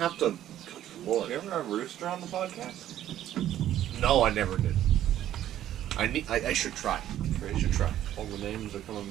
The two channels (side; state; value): left; quieter; 12.1 dB